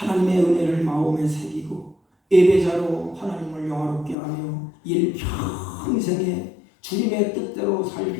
은혜를 마음에 새기고 예배자로 하나님을 영화롭게 하며 일평생에 주님의 뜻대로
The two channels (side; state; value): right; drops out; at 4.2 s